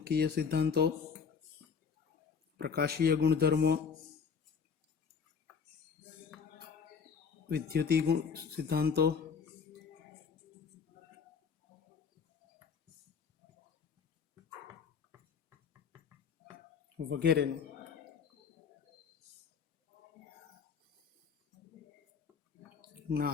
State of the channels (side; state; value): right; quieter; 6.2 dB